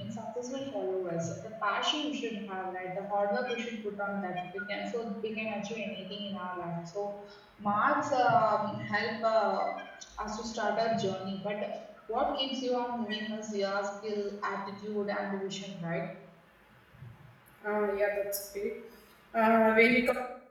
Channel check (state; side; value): identical; both; correlation 1.00